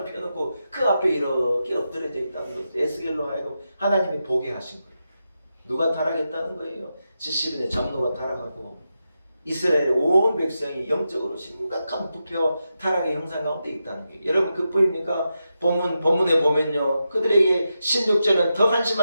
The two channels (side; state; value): both; inverted; correlation -0.88